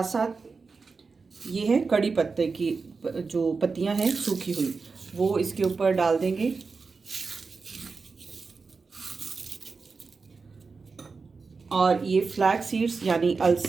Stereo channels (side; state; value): left; quieter; 4.6 dB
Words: साथ ये है कड़ी पत्ते की जो पत्तियां हैं सूखी हुई, वो इसके ऊपर डाल देंगे। और ये फ्लैक्स सीड्स यानी